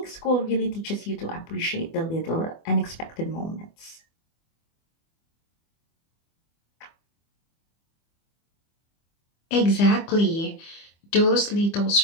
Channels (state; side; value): late; right; 24 ms